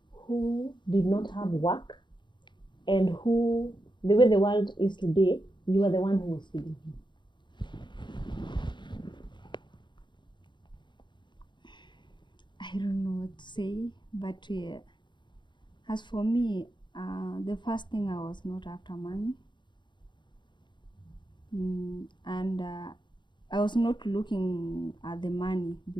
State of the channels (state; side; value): late; right; 0.22 ms